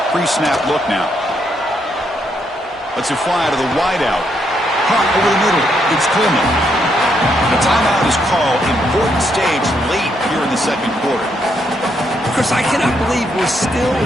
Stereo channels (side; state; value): both; normal; correlation 0.76